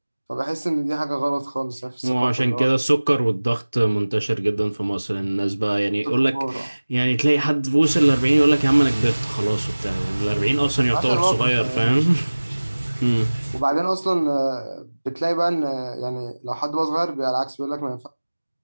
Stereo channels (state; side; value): inverted; both; correlation -1.00